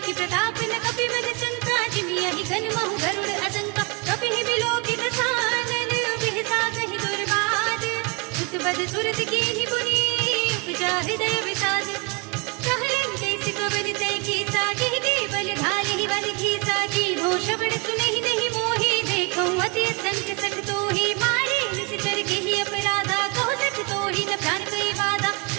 प्रताप न कपि बद संता, जिमियहि घन महु गरुड़ असंका, कपि ही विलोकित सानन, बिहसा कहि दुर्बाद, सुत बद सुरत कीनि पुनि, उपजा हृदय विषाद, कहलन कैसे कवन तै कीसा, कहि के बल धारि बल खीसा, कीन्हो श्रवण सुनहि नहीं मोहि, देखौ अति असंख्य सठ तोहि, मारे निश्चर केहि अपराधा, कहो सठ तोहि न प्राण कई बाधा,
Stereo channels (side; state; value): left; quieter; 29.9 dB